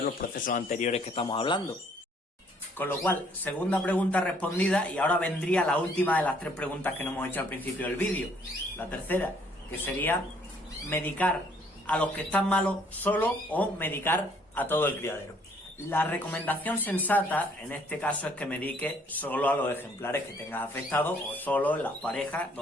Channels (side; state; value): both; normal; correlation 0.63